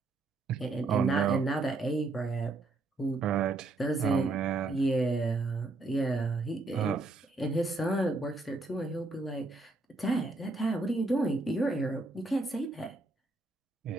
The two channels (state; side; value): quieter; left; 3.2 dB